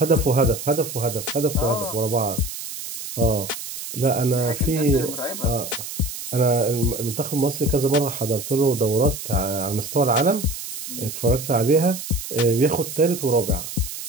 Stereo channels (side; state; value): right; noise; hiss, 9 dB below the sound